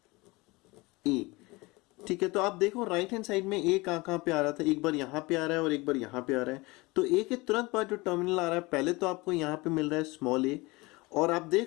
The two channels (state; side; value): quieter; right; 23.3 dB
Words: ए। ठीक है, तो आप देखो राइट हैंड साइड में ए कहाँ पे आ रहा था, एक बार यहाँ पे आ रहा है और एक बार यहाँ पे आ रहा है। तो ए के तुरंत बाद जो टर्मिनल आ रहा है पहले तो आपको यहाँ पे मिल रहा है स्मॉल ए, और आप